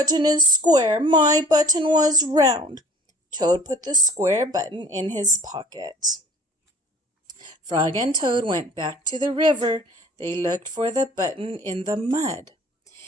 is square. My button was round." Toad put the square button in his pocket. Frog and Toad went back to the river. They looked for the button in the mud.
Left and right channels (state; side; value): normal; both; correlation 0.50